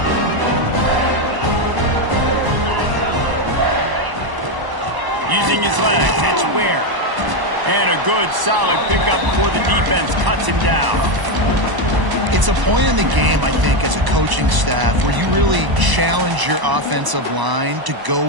Using his legs, it's Ware. And a good, solid pickup before the defense cuts him down. It's a point in the game, I think, as a coaching staff where you really challenge your offensive line to go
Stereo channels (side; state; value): left; late; 1.0 ms